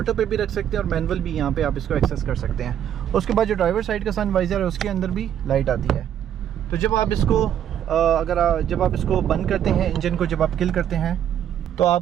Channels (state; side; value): quieter; left; 10.0 dB